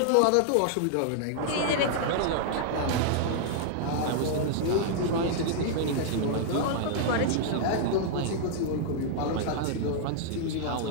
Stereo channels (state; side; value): different; both; correlation -0.01